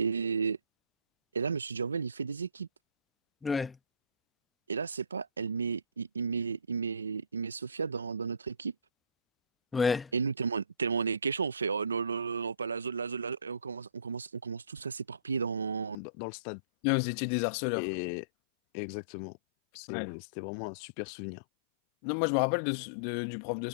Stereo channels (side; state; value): right; drops out; at 16.0 s